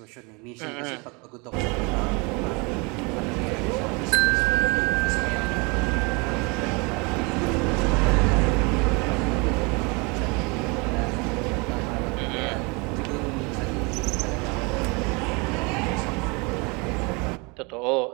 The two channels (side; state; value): left; quieter; 29.2 dB